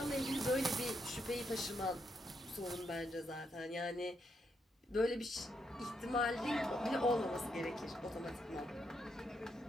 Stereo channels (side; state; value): both; normal; correlation 0.79